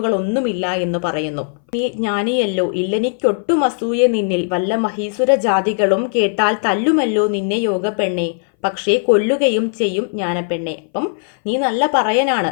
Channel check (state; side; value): silent; right; 61 dB below the other